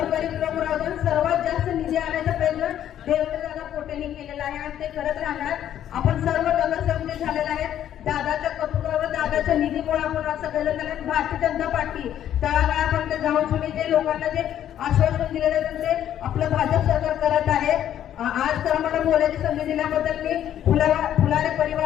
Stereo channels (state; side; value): quieter; right; 10.9 dB